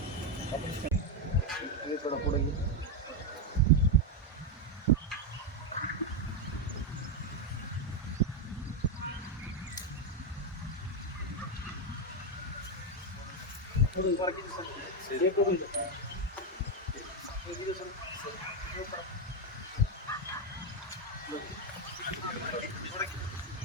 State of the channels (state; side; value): normal; both; correlation 0.05